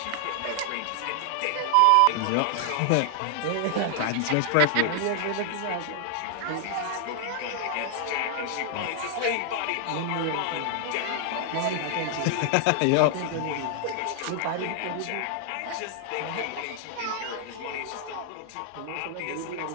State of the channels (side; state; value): both; different; correlation 0.00